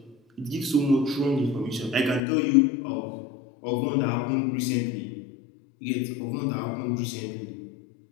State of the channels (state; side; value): drops out; right; at 2.2 s